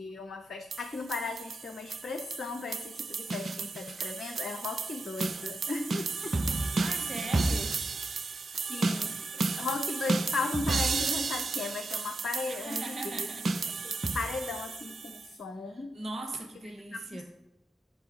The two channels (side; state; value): both; normal; correlation 0.86